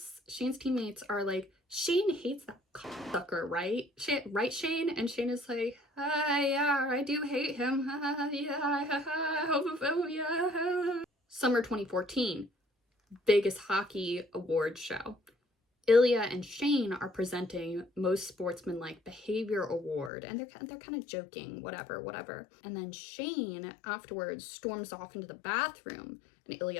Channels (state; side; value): drops out; right; at 20.1 s